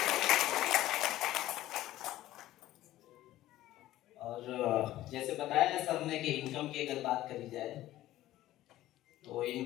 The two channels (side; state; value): right; quieter; 14.9 dB